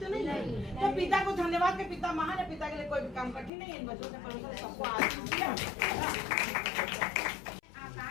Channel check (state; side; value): drops out; right; at 3.5 s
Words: नहीं है। तो पिता को धन्यवाद के पिता महान है, पिता के लिए कोई भी काम कठिन नहीं है। इन बच्चों से परमेश्वर ने सबको आशीष दिया।